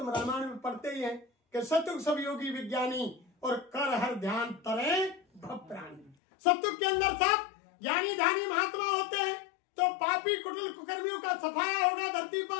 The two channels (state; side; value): drops out; right; at 6.2 s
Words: रामायण में पढ़ते ही हैं कि सत्युग सब योगी विज्ञानी, और कर हर ध्यान तरे भक्तरानी। सत्युग के अंदर सब ज्ञानी ध्यानी महात्मा होते हैं, तो पापी कुटिल कुकर्मियों का सफाया होगा, धरती